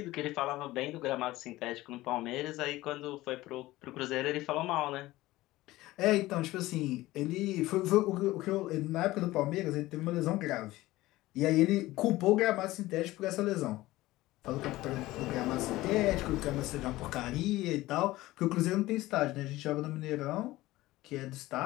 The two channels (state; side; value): quieter; right; 17.7 dB